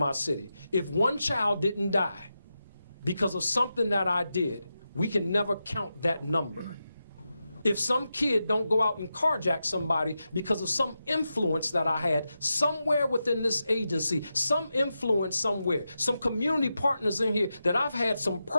city. If one child didn't die because of something that I did, we can never count that number. If some kid don't go out and carjack somebody because of some influence that I had somewhere within this agency, some influence somewhere, some community partners in here that I've had some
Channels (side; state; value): both; inverted; correlation -0.89